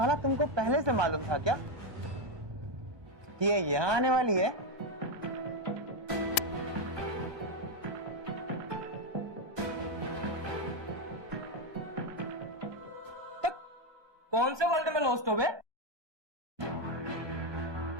तुमको पहले से मालूम था क्या कि ये यहाँ आने वाली है? कौन से वर्ल्ड में लॉस्ट हो बे?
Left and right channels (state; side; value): late; left; 1.2 ms